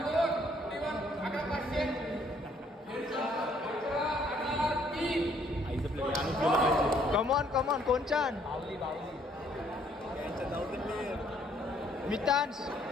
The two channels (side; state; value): both; normal; correlation 0.65